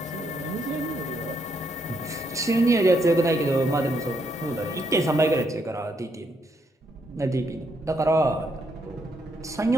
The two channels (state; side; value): normal; both; correlation 0.77